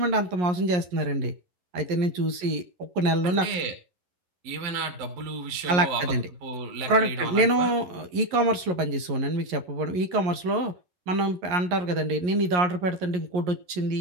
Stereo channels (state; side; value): late; left; 11 ms